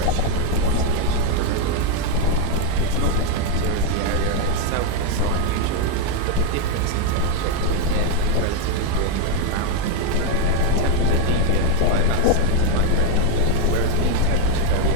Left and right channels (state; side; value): different; both; correlation 0.01